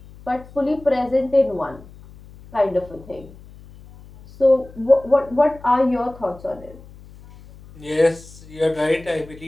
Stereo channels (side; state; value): left; noise; hum, 21 dB below the sound